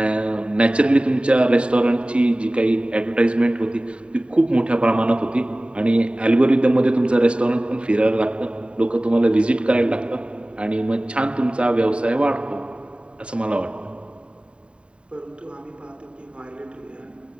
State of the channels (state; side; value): late; left; 0.056 ms